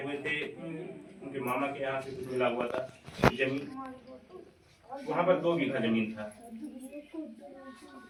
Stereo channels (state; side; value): identical; both; correlation 1.00